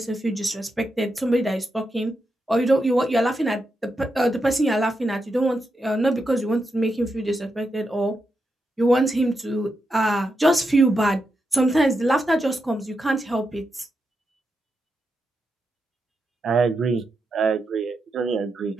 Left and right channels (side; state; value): both; normal; correlation 0.86